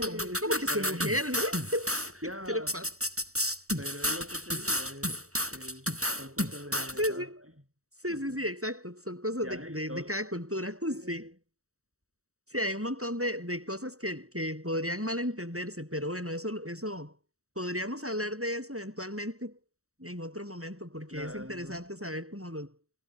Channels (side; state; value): left; late; 0.65 ms